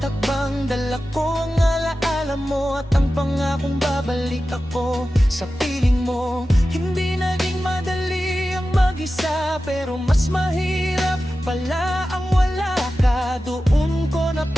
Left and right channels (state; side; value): normal; both; correlation 0.94